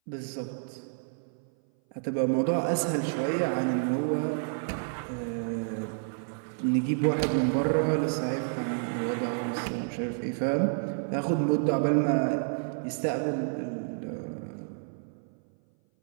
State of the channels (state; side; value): silent; left; 57 dB below the other